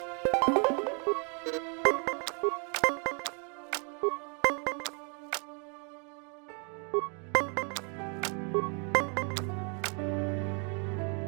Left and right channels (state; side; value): quieter; left; 37.7 dB